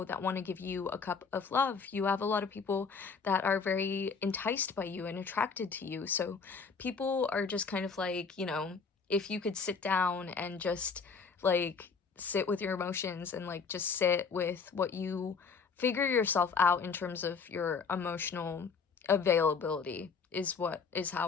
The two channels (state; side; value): quieter; right; 5.3 dB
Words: that want to give you a cup of love. You have a lot of people that are very enticed by you and attracted to you. So people are just kind of like, you know, if you could sit down and just like sit with your emotions and like just sit with what you figure yourself out in terms of your emotional availability is